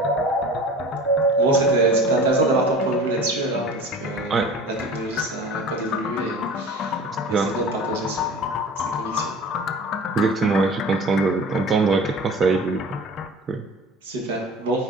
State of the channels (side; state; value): both; normal; correlation 0.39